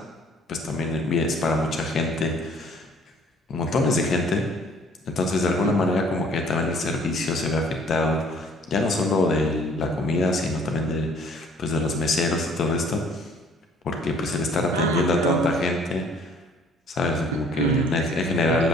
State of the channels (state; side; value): normal; both; correlation 0.56